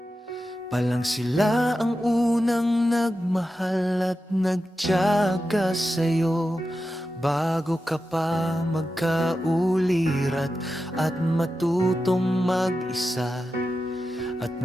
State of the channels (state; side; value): normal; both; correlation 0.91